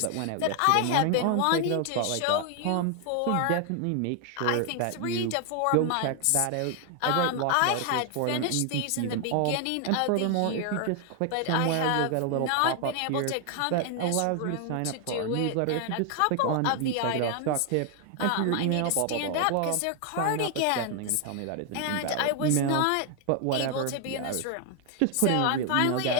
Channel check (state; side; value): different; both; correlation 0.00